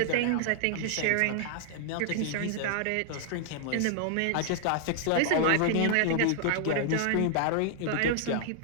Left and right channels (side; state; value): both; different; correlation 0.00